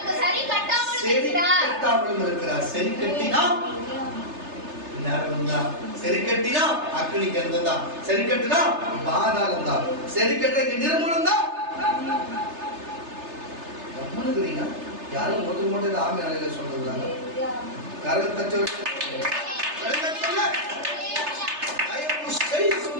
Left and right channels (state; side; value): late; left; 3.3 ms